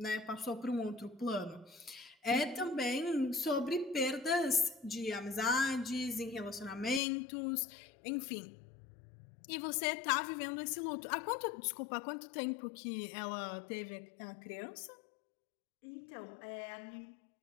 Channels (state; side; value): drops out; right; at 7.0 s